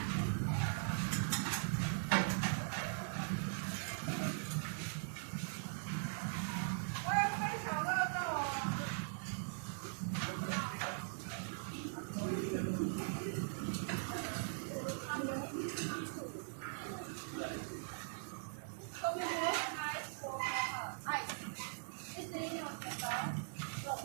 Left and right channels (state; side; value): silent; left; digital silence